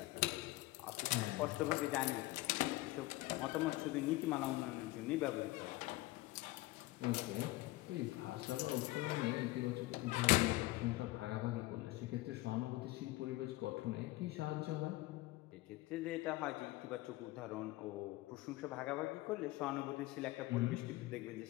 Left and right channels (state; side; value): quieter; right; 19.2 dB